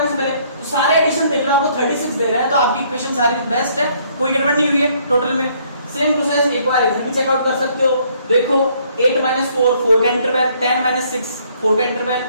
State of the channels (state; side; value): inverted; both; correlation -0.65